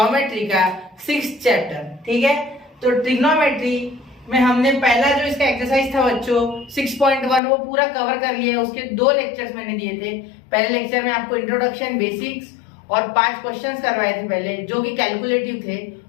का 6th चैप्टर। ठीक है, तो ट्रिग्नोमेट्री में हमने पहला जो इसका एक्सरसाइज था बच्चों 6.1 वो पूरा कवर कर लिया है। उसके 2 लेक्चर्स मैंने दिए थे। पहले लेक्चर में आपको इंट्रोडक्शन, बेसिक्स और 5 क्वेश्चंस करवाए थे पहले, जो कि कैलकुलेटिव थे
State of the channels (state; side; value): drops out; right; at 7.4 s